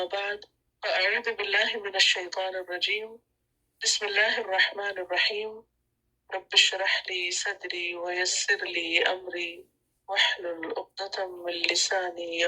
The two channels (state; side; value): identical; both; correlation 1.00